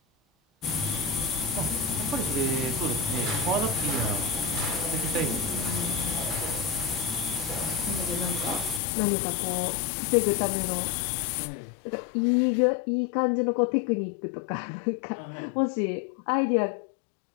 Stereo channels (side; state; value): right; drops out; at 8.8 s